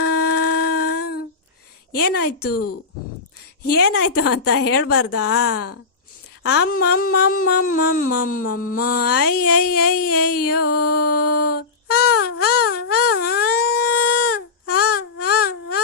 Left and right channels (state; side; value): quieter; right; 4.5 dB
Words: ಏನಾಯ್ತು ಏನಾಯ್ತು ಅಂತ ಹೇಳ್ಬಾರ್ದಾ? ಅಮ್ಮಮ್ಮಮ್ಮಮ್ಮಮ್ಮಮ್ಮಮ್ಮ ಅಯ್ಯಯ್ಯಯ್ಯಯ್ಯೋ.